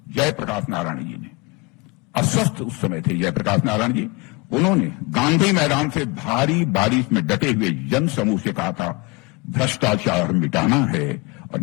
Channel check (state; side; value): quieter; right; 26.6 dB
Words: जयप्रकाश नारायण जी ने, अस्वस्थ उस समय थे जयप्रकाश नारायण जी, उन्होंने गांधी मैदान से भारी बारिश में डटे हुए जन समूह से कहा था, भ्रष्टाचार मिटाना है और